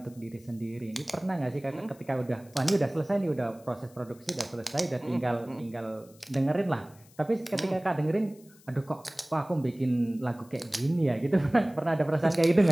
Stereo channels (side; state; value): left; noise; hiss, 27 dB below the sound